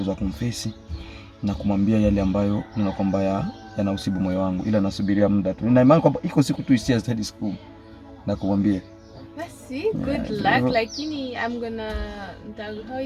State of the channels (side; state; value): both; identical; correlation 1.00